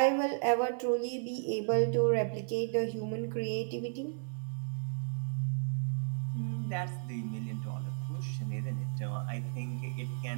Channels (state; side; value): silent; left; digital silence